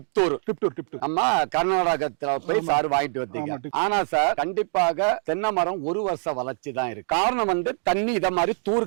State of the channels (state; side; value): silent; left; digital silence